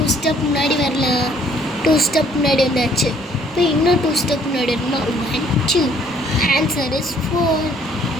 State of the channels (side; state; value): both; normal; correlation 0.62